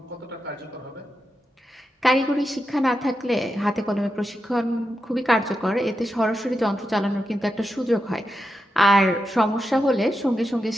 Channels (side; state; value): both; normal; correlation 0.88